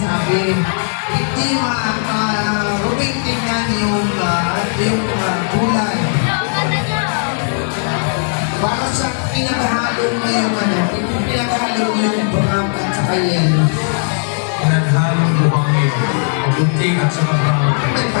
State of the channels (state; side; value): silent; right; digital silence